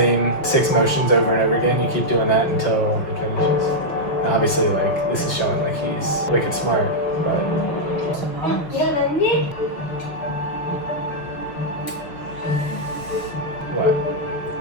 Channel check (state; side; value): late; right; 6.1 ms